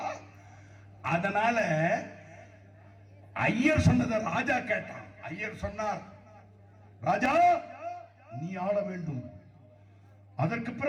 அதனால ஐயர் சொன்னதை ராஜா கேட்டான். ஐயர் சொன்னார், ராஜா நீ ஆள வேண்டும். அதற்கு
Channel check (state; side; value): identical; both; correlation 1.00